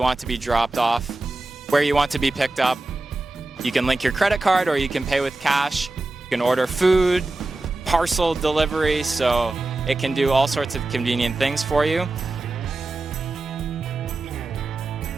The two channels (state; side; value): quieter; left; 3.0 dB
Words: want to be dropped off, where you want to be picked up. You can link your credit card or you can pay with cash. You can order food, parcel delivery, so it can do all sorts of convenient things for you.